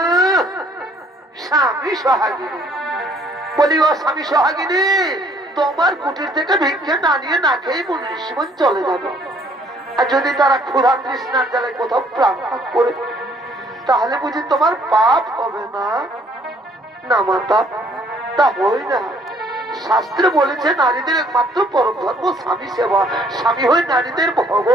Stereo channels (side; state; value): both; normal; correlation 0.61